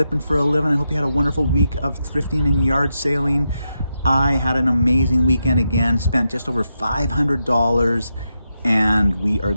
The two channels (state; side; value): inverted; both; correlation -0.85